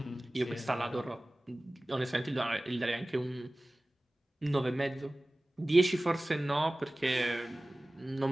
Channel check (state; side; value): normal; both; correlation 0.98